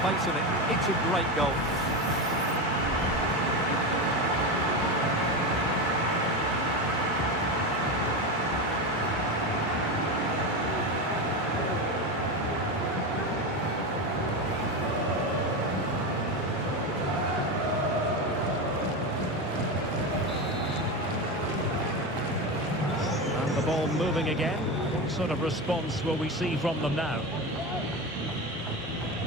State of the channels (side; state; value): both; normal; correlation 0.18